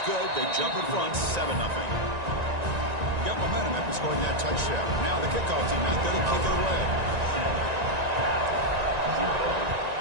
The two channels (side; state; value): left; late; 1.9 ms